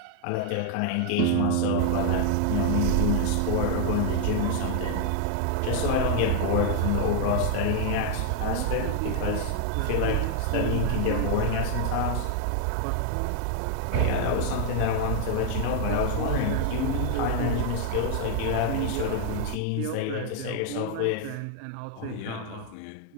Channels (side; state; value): both; different; correlation 0.00